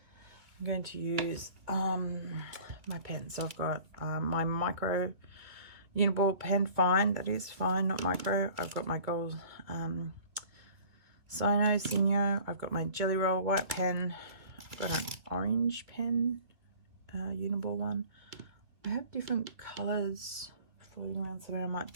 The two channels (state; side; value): late; left; 2.3 ms